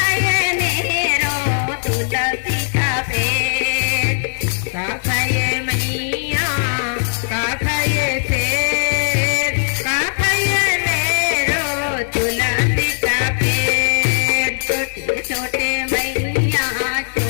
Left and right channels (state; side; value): silent; right; digital silence